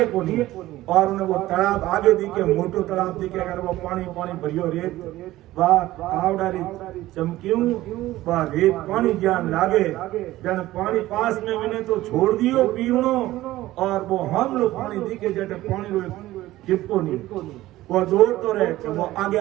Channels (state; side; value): quieter; left; 16.2 dB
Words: को नहीं, और उन्हें वो तालाब आगे दिखे मोटो तालाब दिखे, अगर वो पानी पानी भरियो रेत वाह कावड़ारी चमक्यूं वाह रेत पानी ज्ञान लागे, जन पानी पास में मिले तो छोड़ दियो पीवनो, और वो हम लोग पानी दिखे जटे पानी चिपको नहीं, वो दौड़ तो रहे कि वो आगे